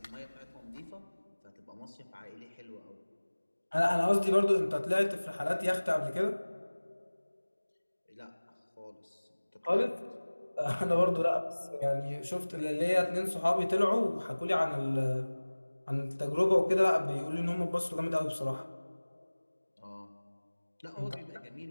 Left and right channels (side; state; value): both; inverted; correlation -1.00